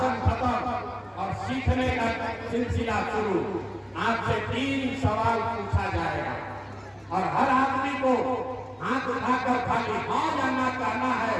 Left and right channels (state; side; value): identical; both; correlation 1.00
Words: खत्म और सीखने का सिलसिला शुरू। आपसे 3 सवाल पूछा जाएगा और हर आदमी को हाथ उठाकर खाली हाँ या ना कहना है।